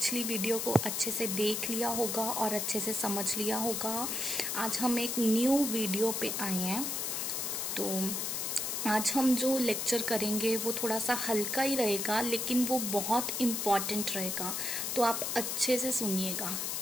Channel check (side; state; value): left; noise; hiss, 1 dB below the sound